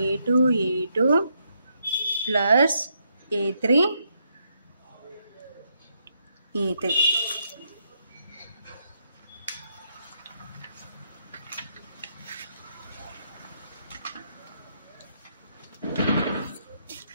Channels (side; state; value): both; inverted; correlation -0.78